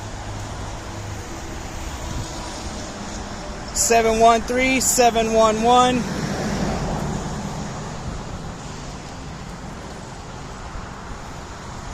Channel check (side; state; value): both; identical; correlation 1.00